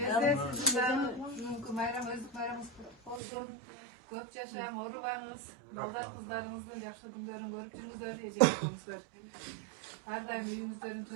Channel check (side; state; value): left; drops out; at 3.2 s